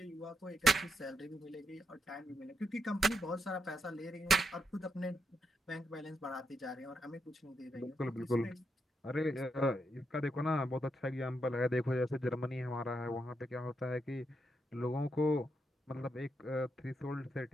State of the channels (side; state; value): both; normal; correlation 0.82